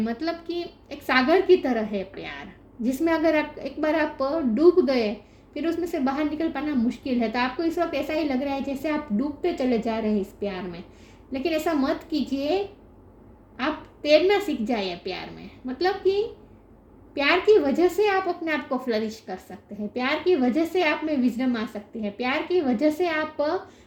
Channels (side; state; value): both; identical; correlation 1.00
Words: मतलब कि एक सागर की तरह है प्यार, जिसमें अगर आप एक बार डूब गए, फिर उसमें से बाहर निकल पाना मुश्किल है। तो आपको इस वक्त ऐसा ही लग रहा है जैसे आप डूबते चले जा रहे हैं इस प्यार में, लेकिन ऐसा मत कीजिए। आप तैरना सीख जाइए प्यार में। मतलब कि प्यार की वजह से आप अपने आप को फ्लरिश कर सकते हैं। प्यार की वजह से आप में विजडम आ सकती है। प्यार की वजह से आप